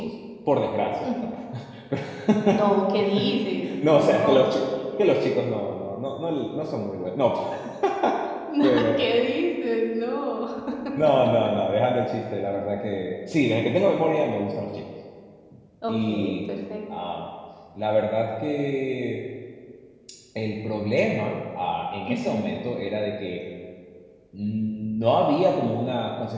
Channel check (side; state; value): both; identical; correlation 1.00